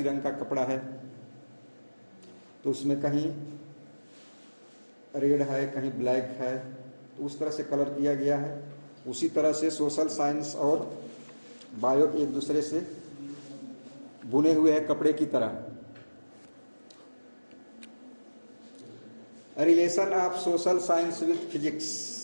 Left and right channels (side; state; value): both; inverted; correlation -1.00